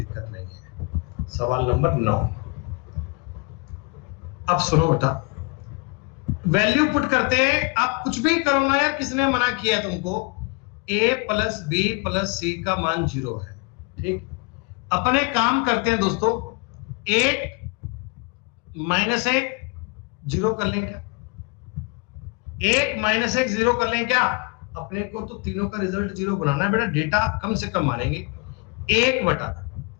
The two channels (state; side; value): quieter; right; 30.3 dB